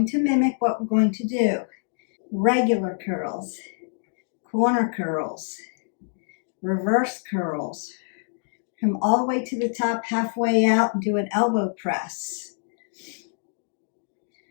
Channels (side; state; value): right; silent; digital silence